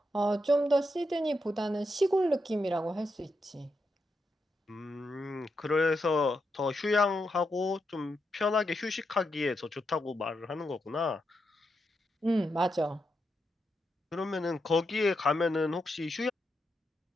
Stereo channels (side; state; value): both; normal; correlation 0.84